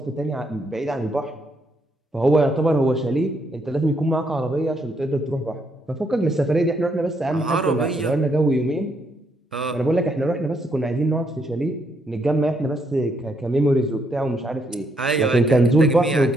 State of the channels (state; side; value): normal; both; correlation 0.75